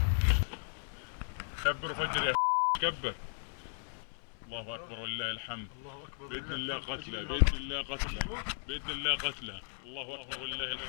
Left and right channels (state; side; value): silent; right; 54 dB below the other